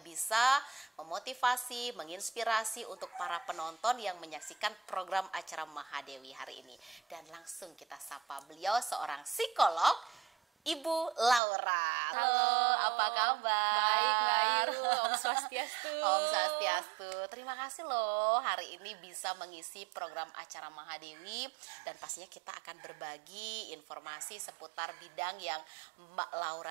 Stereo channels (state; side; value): drops out; left; at 11.4 s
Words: bisa memotivasi, menginspirasi untuk para penonton yang menyaksikan program acara Mahadewi hari ini. Dan langsung kita sapa beliau, seorang psikolog, Ibu Laura. Halo, apa kabar? Baik, baik. Om Swastiastu. Om Swastiastu. Terima kasih loh hari ini bisa mengisi program acara Mahadewi, dan pastinya kita akan berbagi informasi seputar bidang yang Mbak